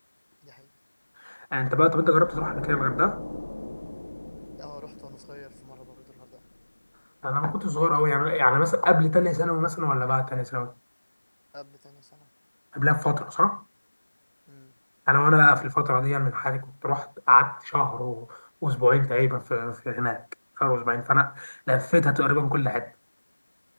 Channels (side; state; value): both; inverted; correlation -1.00